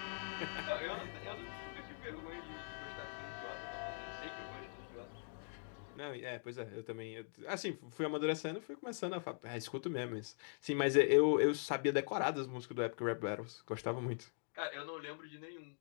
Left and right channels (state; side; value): silent; right; digital silence